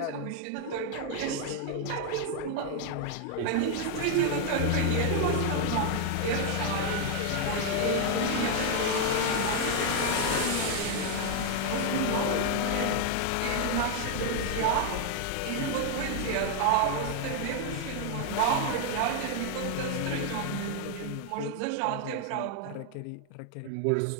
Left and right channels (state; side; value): different; both; correlation 0.00